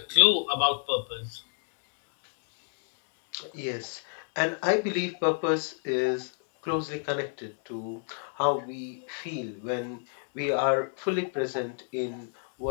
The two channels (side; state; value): right; silent; 58 dB below the other